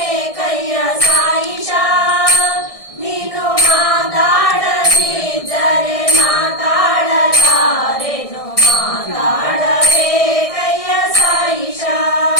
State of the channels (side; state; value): right; late; 1.6 ms